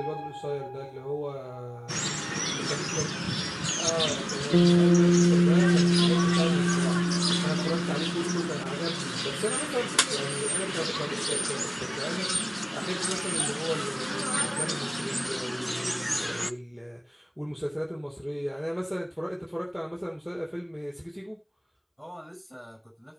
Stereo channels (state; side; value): identical; both; correlation 1.00